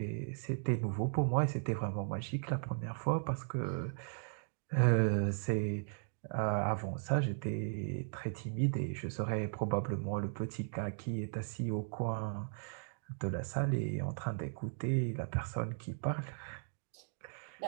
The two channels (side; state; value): left; silent; digital silence